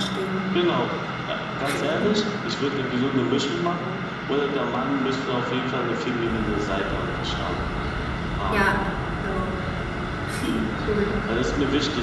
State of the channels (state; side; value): identical; both; correlation 1.00